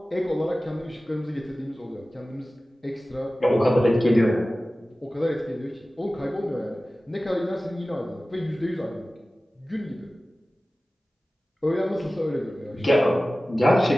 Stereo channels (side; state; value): both; normal; correlation 0.96